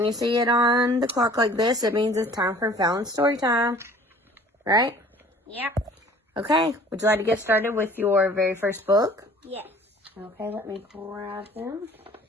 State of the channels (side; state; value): both; normal; correlation 0.50